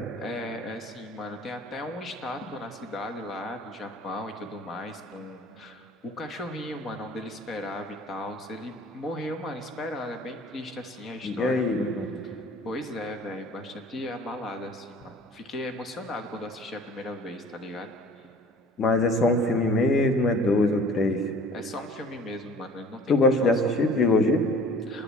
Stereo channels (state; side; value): normal; both; correlation 0.47